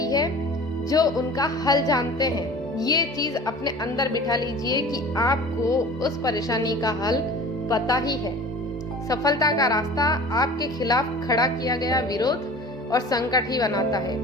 है जो उनका हल जानते हैं। ये चीज अपने अंदर बिठा लीजिए कि आपको उस परेशानी का हल पता ही है। सफलता का रास्ता आपके खिलाफ खड़ा किया गया विरोध और संकट ही बनाता है।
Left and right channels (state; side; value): normal; both; correlation 0.41